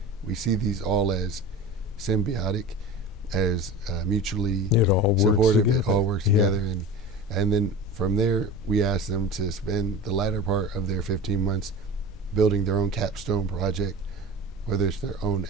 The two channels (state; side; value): normal; both; correlation 0.35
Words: we see these all as symbiotic, as mutually supportive. It all works together. And then from there, we ask them to spend the latter part of their 15 months building their own capstone project, whether it's their own